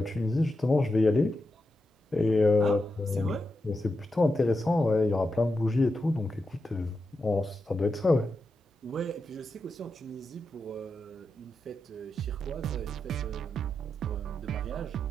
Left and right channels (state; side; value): normal; both; correlation 0.88